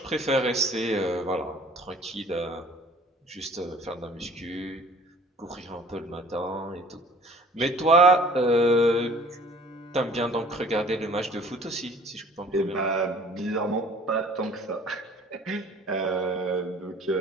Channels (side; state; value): both; normal; correlation 0.51